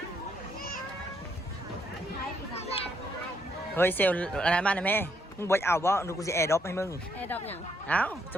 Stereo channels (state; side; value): normal; both; correlation 0.73